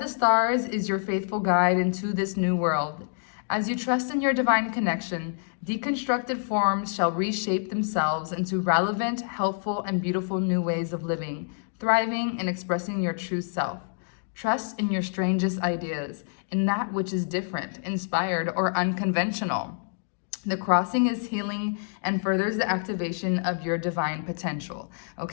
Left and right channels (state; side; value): silent; right; digital silence